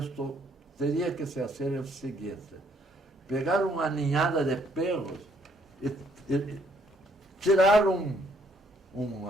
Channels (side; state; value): both; normal; correlation 0.67